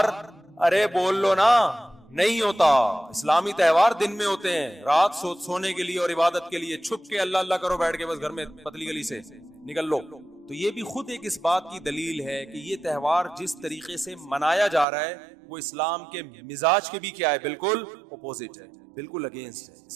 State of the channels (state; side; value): drops out; left; at 14.9 s